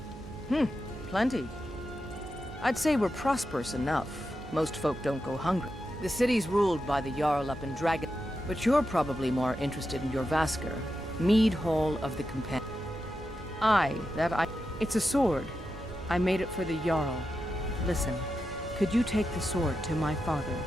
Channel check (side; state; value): right; noise; hum, 14 dB below the sound